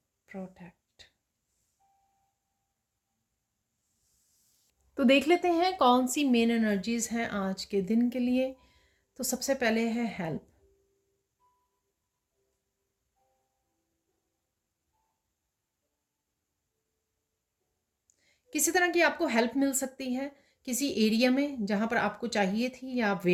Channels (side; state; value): both; identical; correlation 1.00